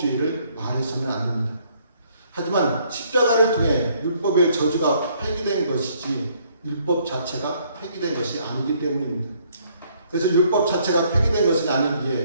말해서는 안 됩니다. 하지만 십자가를 통해 율법의 저주가 폐기된 것이지 율법 자체가 폐기된 것이 아니기 때문입니다. 그래서 율법 자체가 폐기된 것은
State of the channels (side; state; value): both; inverted; correlation -0.66